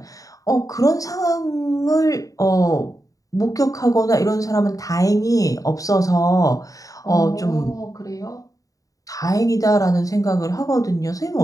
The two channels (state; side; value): late; right; 0.17 ms